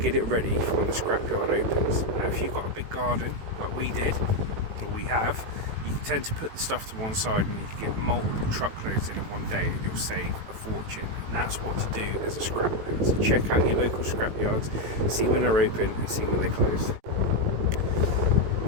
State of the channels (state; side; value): late; left; 18 ms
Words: get it ready for when the scrapyard opens. Now, if you've got a big garden like we did, or we have, you tend to put the stuff to one side and you can get multiple truckloads in one day and you'll save a fortune, and that's what to do as a scrap man. So check out your local scrap yards, see when they're open and see when they close.